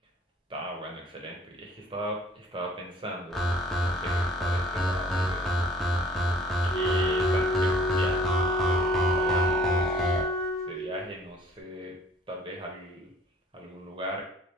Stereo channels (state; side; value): normal; both; correlation 0.55